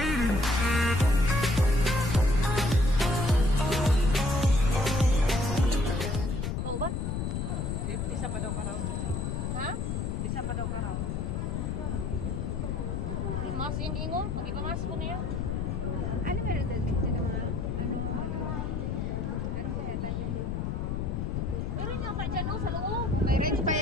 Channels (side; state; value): left; noise; rumble, 1 dB below the sound